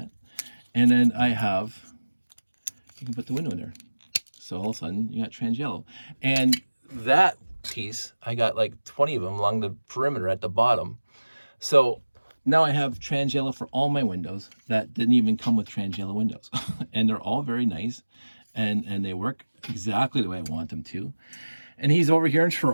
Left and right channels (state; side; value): inverted; both; correlation -1.00